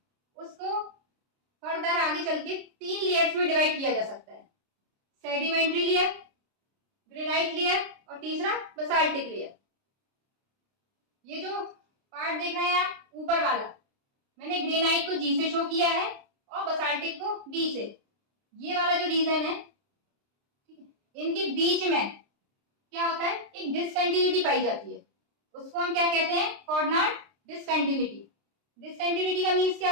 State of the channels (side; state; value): left; late; 29 ms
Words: उसको फर्दर आगे चल के 3 लेयर्स में डिवाइड किया जा सकता है, सेडिमेंट्री लेयर, ग्रेनाइट लेयर और तीसरा बेसाल्टिक लेयर। ये जो पार्ट देख रहे हैं आप ऊपर वाला मैंने ग्रेनाइट को जी से शो किया है और बसाल्टिक को बी से। ये वाला जो रीजन है, ठीक है, इनके बीच में क्या होता है, एक डिसकंटिन्यूटी पाई जाती है। उसको हम क्या कहते हैं, कोऑर्डिनेट डिसकंटिन्यूटी। डिसकंटिन्यूटी का मीन्स